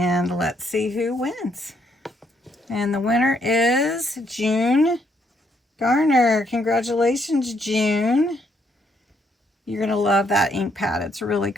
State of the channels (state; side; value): normal; both; correlation 0.72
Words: let's see who wins. And the winner is June Garner. Congratulations, June. You're going to love that ink pad. It's really